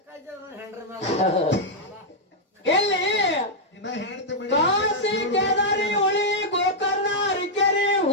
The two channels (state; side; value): normal; both; correlation -0.04